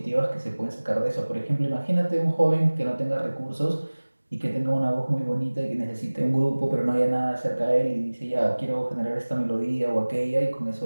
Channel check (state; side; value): inverted; both; correlation -1.00